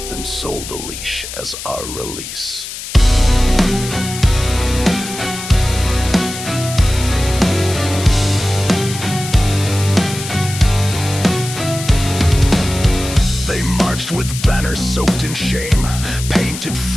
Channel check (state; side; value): noise; left; hiss, 9 dB below the sound